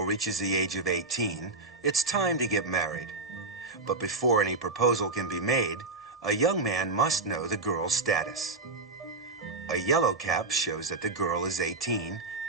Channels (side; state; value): left; quieter; 3.6 dB